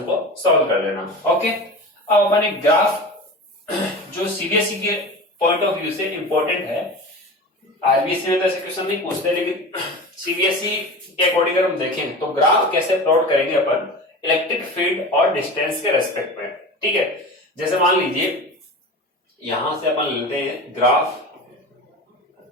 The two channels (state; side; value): normal; both; correlation 0.31